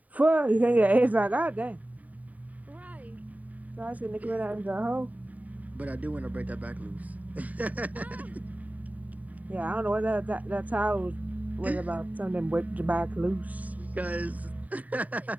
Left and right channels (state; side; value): late; left; 0.072 ms